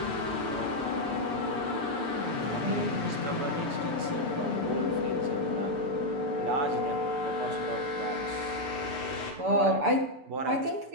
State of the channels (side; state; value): left; late; 6.9 ms